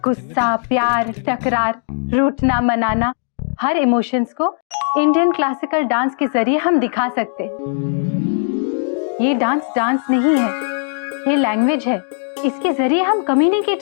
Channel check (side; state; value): right; silent; digital silence